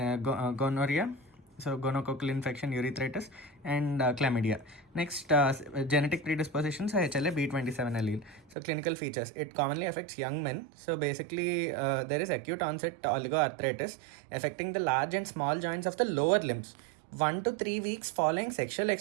so gonococcal infection, urethritis, and chlamydia. Next, genetic predispositions, HLA B27 allele. So clinical features, it commonly affects young men. So basically there is acute onset oligoarthritis affecting the large and small joints of the lower limbs. 1 to 3 weeks following sexual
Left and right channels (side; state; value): left; drops out; at 8.6 s